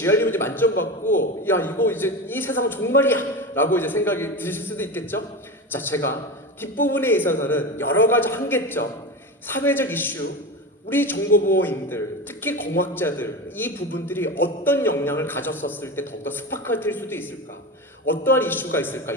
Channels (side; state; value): both; normal; correlation 0.24